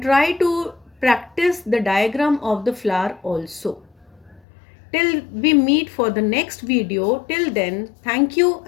try to practice the diagram of the flower also. Till we meet for the next video, till then, thank you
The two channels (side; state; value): right; drops out; at 4.4 s